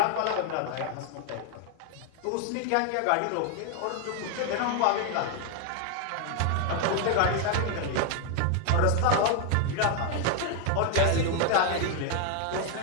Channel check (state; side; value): different; both; correlation 0.00